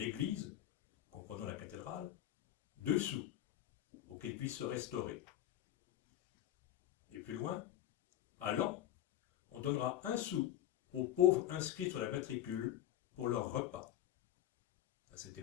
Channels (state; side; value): quieter; right; 12.3 dB